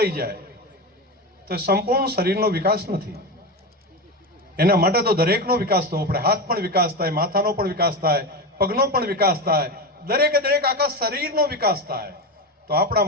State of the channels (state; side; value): normal; both; correlation 0.19